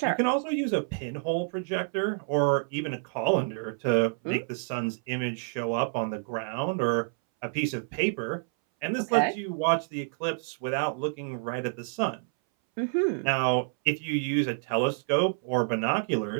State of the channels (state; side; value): silent; left; 59 dB below the other